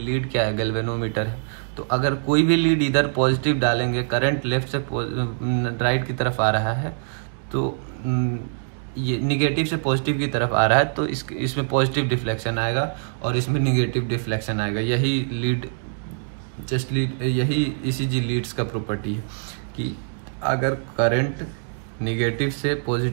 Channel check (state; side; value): silent; left; digital silence